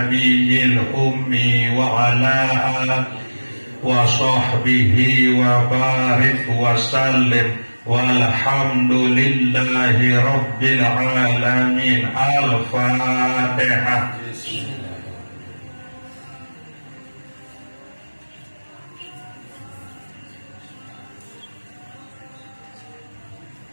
ummi wa ala alihi wa sahbihi wa barik wa sallim. Walhamdulillahi rabbil alamin. Al-Fatihah.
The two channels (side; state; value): both; inverted; correlation -1.00